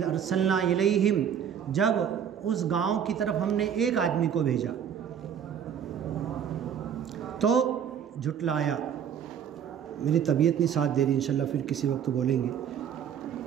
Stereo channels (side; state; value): left; quieter; 8.6 dB